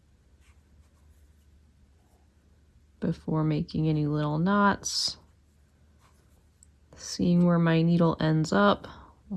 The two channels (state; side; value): identical; both; correlation 1.00